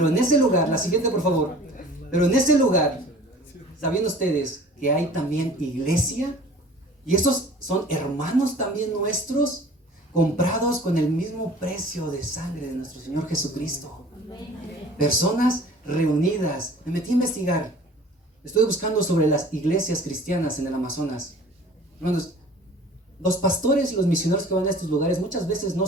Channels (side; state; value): both; normal; correlation 0.46